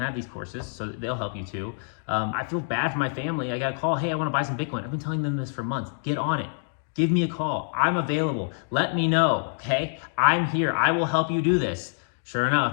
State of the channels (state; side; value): silent; right; digital silence